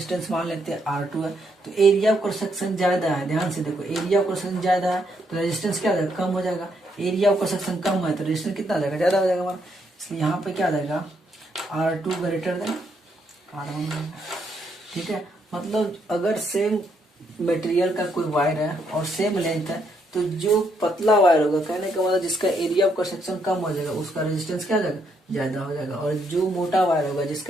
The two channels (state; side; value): normal; both; correlation 0.75